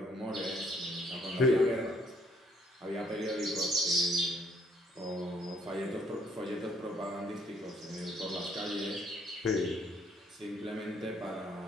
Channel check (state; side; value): normal; both; correlation 0.65